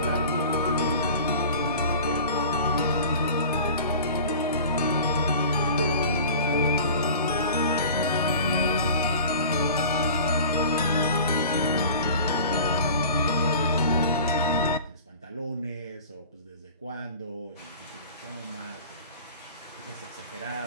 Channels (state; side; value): inverted; both; correlation -0.41